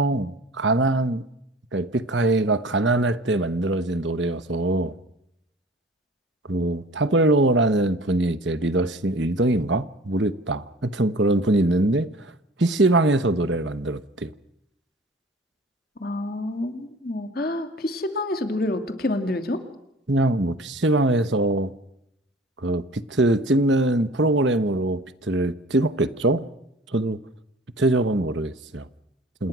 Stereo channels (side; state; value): both; normal; correlation 0.44